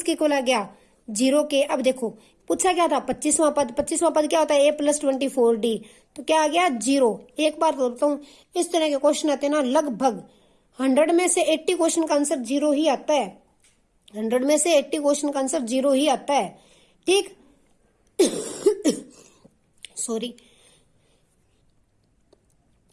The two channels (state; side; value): identical; both; correlation 1.00